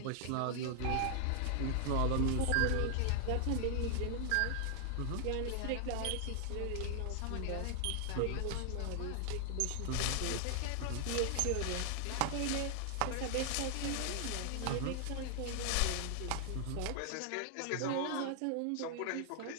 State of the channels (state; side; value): different; both; correlation 0.00